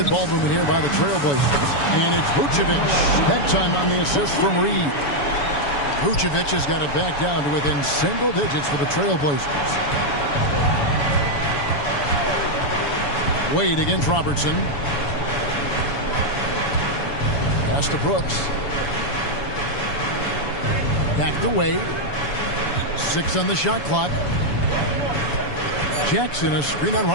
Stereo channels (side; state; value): right; late; 7.0 ms